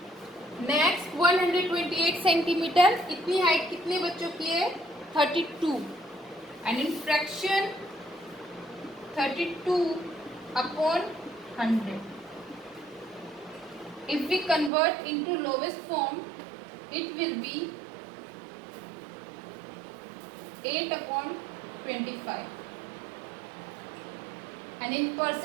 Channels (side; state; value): left; drops out; at 14.7 s